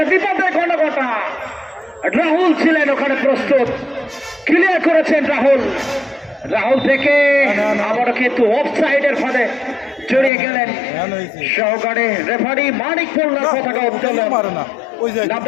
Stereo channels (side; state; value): right; drops out; at 10.3 s